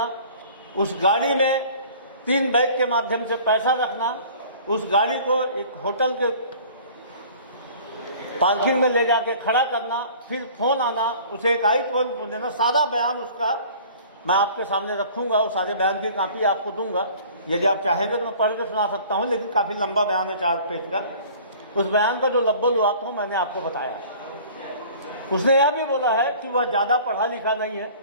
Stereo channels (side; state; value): both; inverted; correlation -0.47